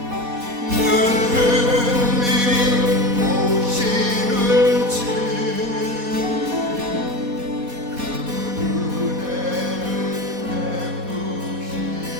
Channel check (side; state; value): left; late; 4.2 ms